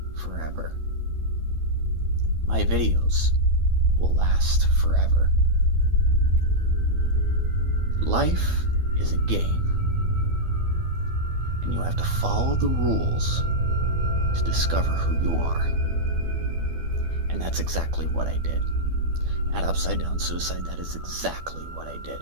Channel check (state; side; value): late; left; 12 ms